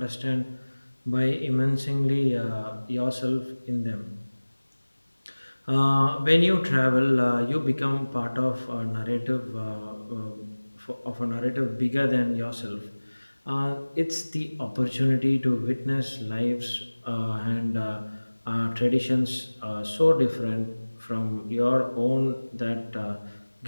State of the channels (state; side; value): inverted; both; correlation -1.00